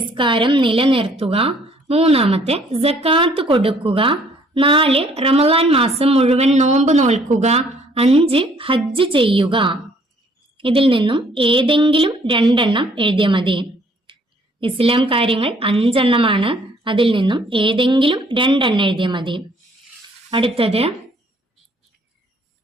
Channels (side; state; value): both; normal; correlation 0.62